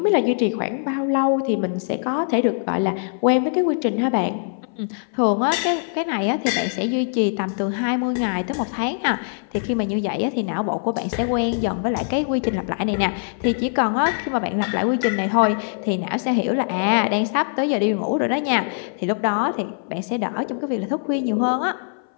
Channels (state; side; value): silent; right; 59 dB below the other